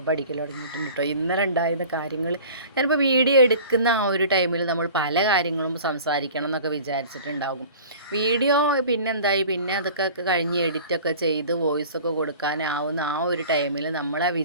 പഠിക്കൽ തുടങ്ങിയിട്ടുണ്ട് കേട്ടോ. ഇന്നലെ ഉണ്ടായിരുന്ന കാര്യങ്ങൾ ഞാനിപ്പോൾ വീഡിയോ എടുക്കുന്ന ആ ഒരു ടൈമിൽ നമ്മൾ പല കാര്യങ്ങളും സംസാരിക്കണം എന്നൊക്കെ വിചാരിച്ചിട്ടുണ്ടാകും. വീഡിയോ പിന്നെന്തായി, പിന്നെ അതൊക്കെ കഴിഞ്ഞ് എഡിറ്റൊക്കെ ചെയ്ത് വോയിസൊക്കെ കൊടുക്കാനാവുന്ന ആ ഒരു ടൈമിൽ നമ്മൾ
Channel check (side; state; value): both; inverted; correlation -0.42